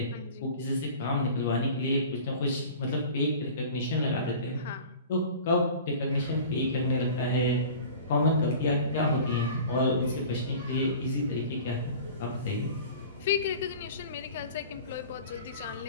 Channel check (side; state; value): both; inverted; correlation -0.40